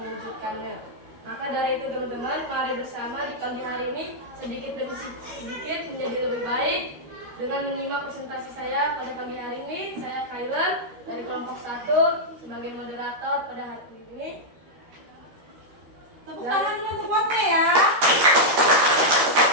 Maka dari itu teman-teman, mari bersama di pagi hari ini sedikit demi sedikit menjadi lebih baik dengan menyimak presentasi saya pada pagi hari ini. Saya Kailan dari kelompok 1 sebagai moderator pada hari ini. Tepuk tangan untuk quote-nya ya.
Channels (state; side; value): late; left; 13 ms